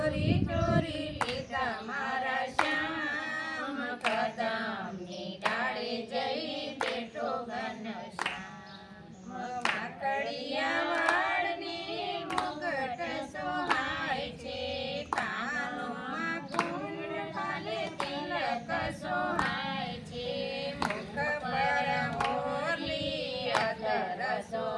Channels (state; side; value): identical; both; correlation 1.00